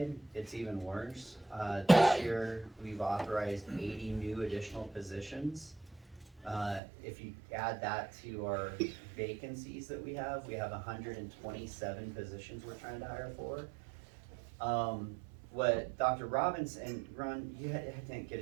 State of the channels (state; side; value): drops out; left; at 6.8 s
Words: it's even worse. This year, we've authorized 80 new additional positions. If you add that to our vacancies that we have 127 positions we're trying to hire for. What Dr. Robinson, and Ron, you didn't get a